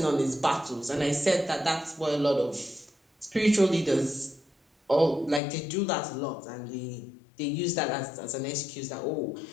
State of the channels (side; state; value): right; drops out; at 5.4 s